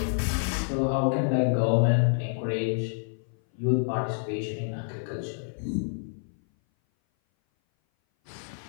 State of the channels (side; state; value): right; silent; 57 dB below the other